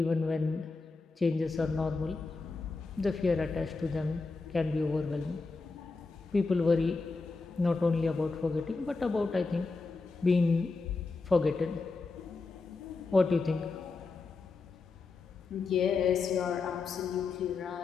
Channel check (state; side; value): quieter; right; 4.0 dB